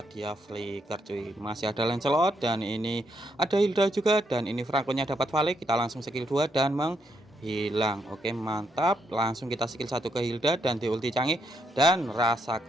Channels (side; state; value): both; normal; correlation 0.77